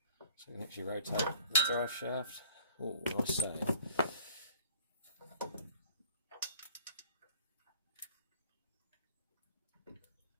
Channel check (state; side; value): inverted; both; correlation -0.51